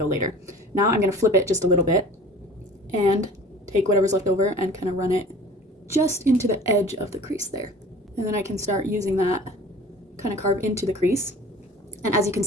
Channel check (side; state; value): both; normal; correlation 0.44